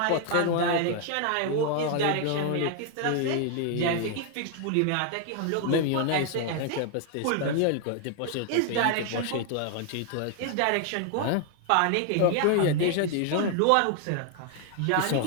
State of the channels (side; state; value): both; different; correlation 0.00